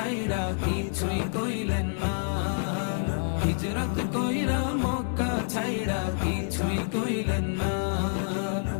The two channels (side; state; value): right; silent; digital silence